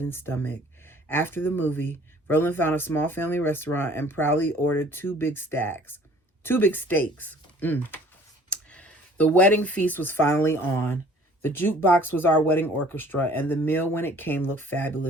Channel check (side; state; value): both; normal; correlation 0.53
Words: and stomach. After the movie, Verlin found a small family restaurant and proudly ordered two big steaks. The wedding feast was finally on. The jukebox was our wedding orchestra, and the meal when it came looked